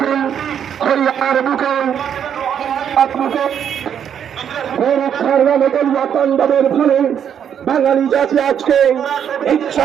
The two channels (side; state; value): left; quieter; 8.7 dB